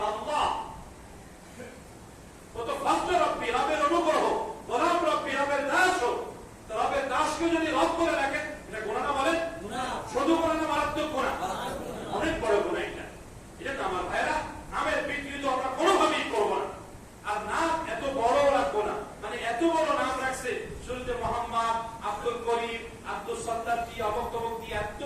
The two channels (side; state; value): both; identical; correlation 1.00